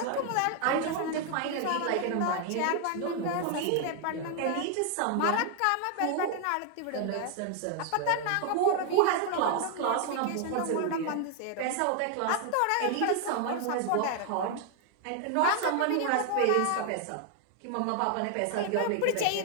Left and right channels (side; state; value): both; different; correlation 0.00